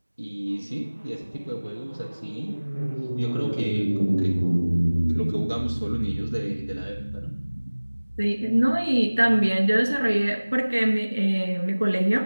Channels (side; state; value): both; inverted; correlation -1.00